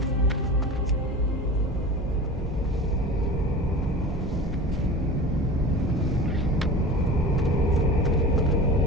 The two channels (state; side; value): normal; both; correlation 0.35